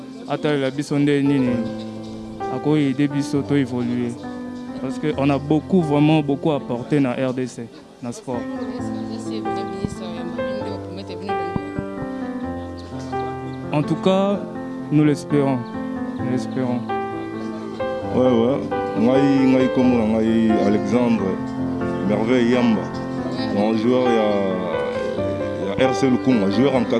la biso nini à quoi aider biso to évoluer parce que on a vraiment beaucoup apporté dans RDC dans le sport. En tout cas, nous l'espérons. Ouais. Ngai comme Alexandre Merveille Yamba. Mon joueur il y a RC Lukunga, joueur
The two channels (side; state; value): both; identical; correlation 1.00